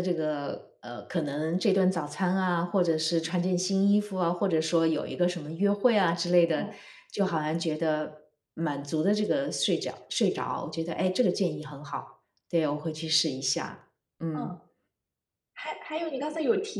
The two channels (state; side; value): identical; both; correlation 1.00